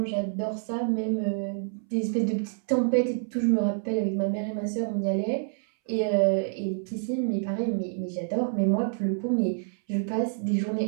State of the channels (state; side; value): silent; left; 60 dB below the other